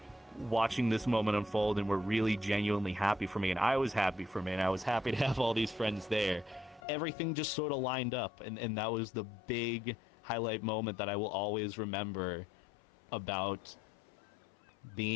watching this moment unfold, and were really genuinely happy for me, and I was happy for me, and I was happy to have all these friends there. Everything just sort of lined up, and that was the big highlight moment that I will always remember about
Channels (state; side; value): drops out; right; at 6.8 s